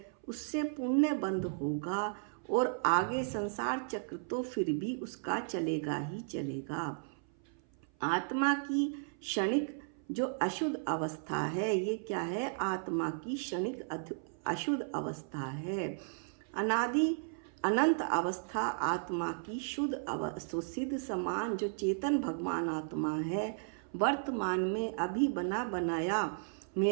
उससे पुण्य बंध होगा, और आगे संसार चक्र तो फिर भी उसका चलेगा ही चलेगा। आत्मा की क्षणिक जो अशुद्ध अवस्था है, ये क्या है? आत्मा की क्षणिक अशुद्ध अवस्था है। अनादि अनंत अवस्था आत्मा की शुद्ध सिद्ध समान जो चेतन भगवान आत्मा है, वर्तमान में अभी बना बनाया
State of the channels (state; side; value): silent; left; 55 dB below the other